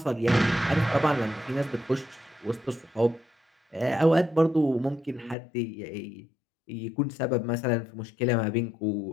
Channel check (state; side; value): drops out; right; at 5.4 s